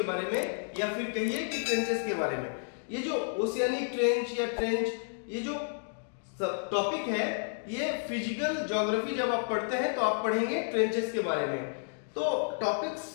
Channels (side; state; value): right; silent; digital silence